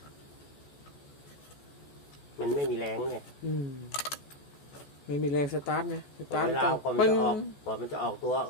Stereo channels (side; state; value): right; late; 14 ms